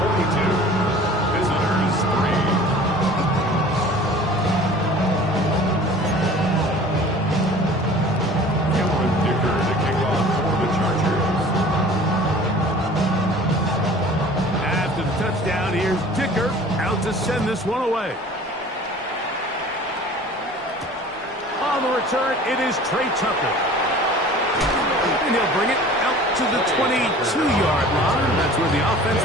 visitors 3. Cameron Dicker to kick off for the Chargers. After the touchdown, here's Dicker out to send this this one away. On the return, it is Trey Tucker. And he'll bring it out to the 22-yard line. That's where the offense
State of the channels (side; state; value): both; normal; correlation 0.45